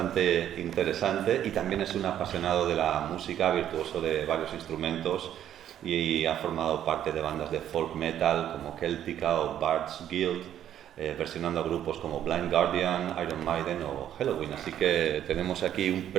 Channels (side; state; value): left; quieter; 10.8 dB